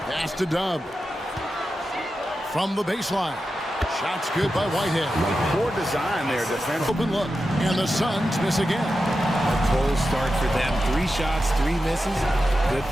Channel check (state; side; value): normal; both; correlation 0.91